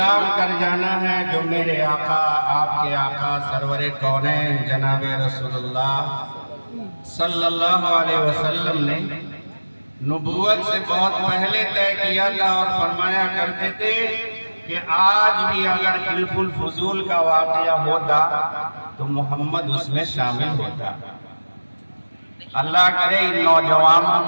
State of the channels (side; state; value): both; inverted; correlation -1.00